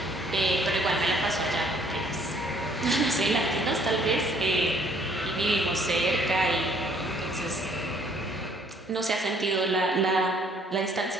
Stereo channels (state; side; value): normal; both; correlation 0.62